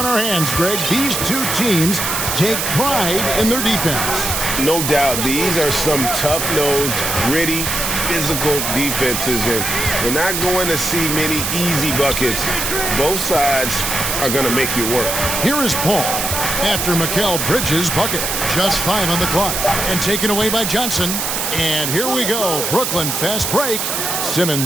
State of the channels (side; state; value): right; noise; hiss, 1 dB below the sound